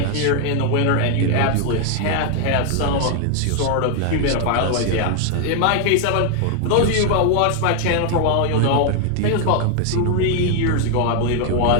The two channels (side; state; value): both; different; correlation 0.00